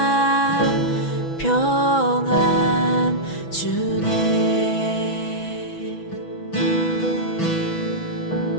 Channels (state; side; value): late; right; 6.1 ms